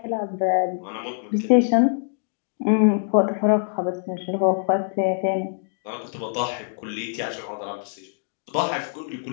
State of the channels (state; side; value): silent; right; 62 dB below the other